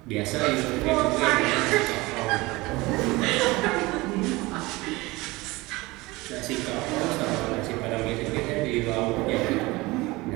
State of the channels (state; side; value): quieter; left; 21.9 dB